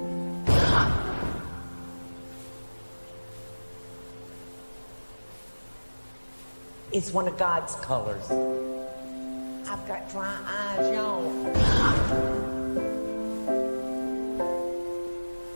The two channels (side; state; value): both; inverted; correlation -1.00